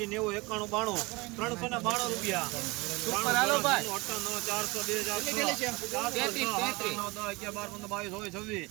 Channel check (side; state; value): left; quieter; 24.4 dB